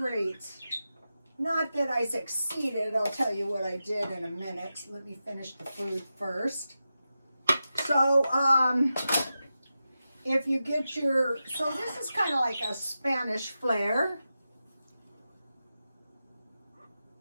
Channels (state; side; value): inverted; both; correlation -0.91